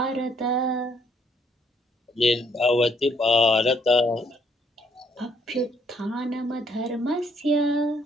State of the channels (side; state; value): both; normal; correlation 0.68